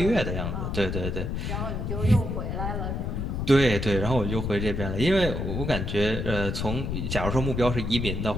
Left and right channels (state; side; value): noise; left; rumble, 2 dB below the sound